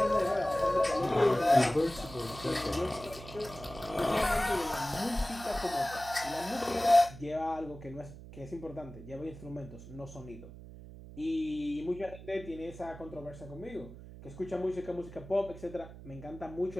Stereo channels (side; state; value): right; noise; hum, 15 dB below the sound